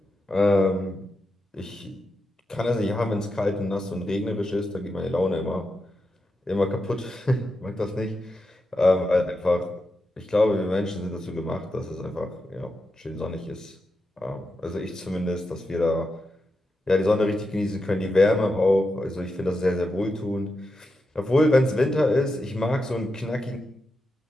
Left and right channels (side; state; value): both; normal; correlation 0.87